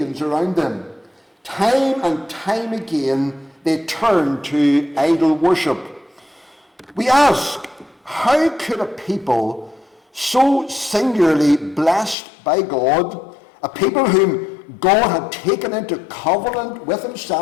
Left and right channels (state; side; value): drops out; right; at 12.2 s